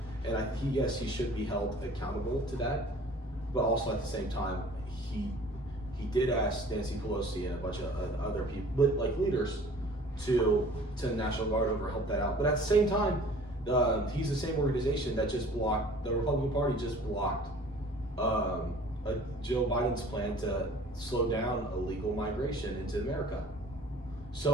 And he should be held accountable to that. But also at the same time, he did ask Nancy Pelosi and a bunch of other people, like leaders, to the National Guard over help that out. But at the same time, he's the same organization that just blocked, the Republican Party just blocked Joe Biden's plan to slow down illegal migration into America.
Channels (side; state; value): both; normal; correlation 0.49